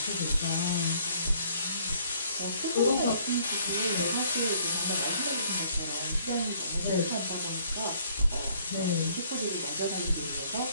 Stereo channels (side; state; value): both; inverted; correlation -0.62